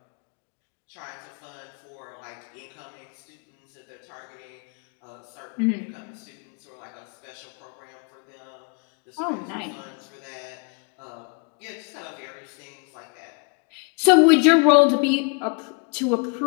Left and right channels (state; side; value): quieter; right; 36.2 dB